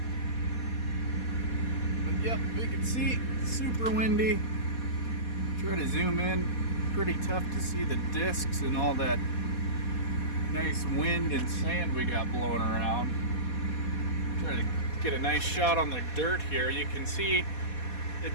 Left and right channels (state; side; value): late; right; 4.2 ms